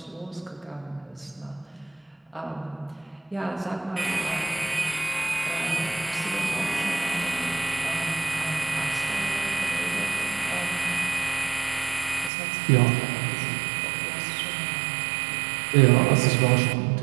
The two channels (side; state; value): left; drops out; at 12.3 s